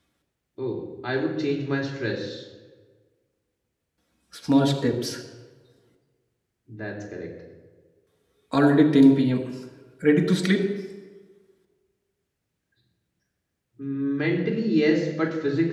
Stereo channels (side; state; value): both; identical; correlation 1.00